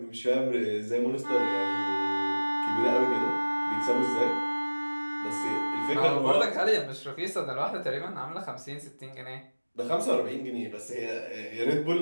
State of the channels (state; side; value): inverted; both; correlation -1.00